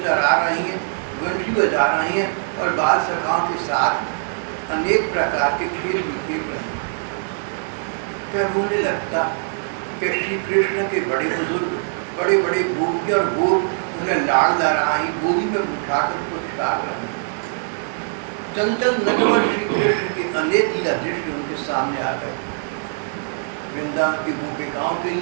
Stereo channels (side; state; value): left; silent; 64 dB below the other